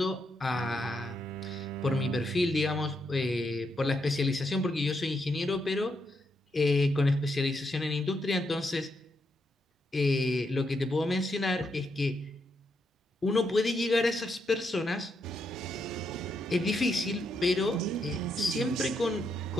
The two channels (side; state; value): both; normal; correlation 0.80